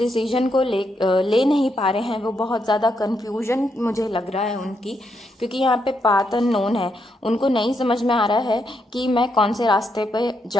को ले नहीं पा रहे हैं। वो बहुत ज़्यादा कन्फ्यूजन मुझे लग रहा है उनकी, क्योंकि यहाँ पे पाथ अननोन है। उनको नहीं समझ में आ रहा है कि मैं कौन से रास्ते पे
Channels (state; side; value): normal; both; correlation 0.79